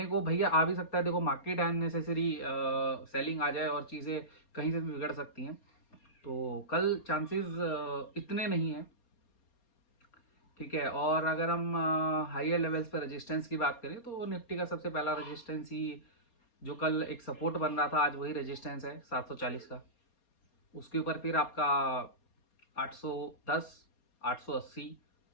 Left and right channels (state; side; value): late; right; 4.3 ms